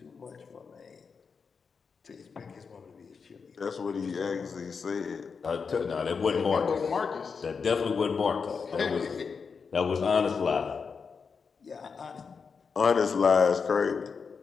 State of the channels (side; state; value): right; quieter; 5.5 dB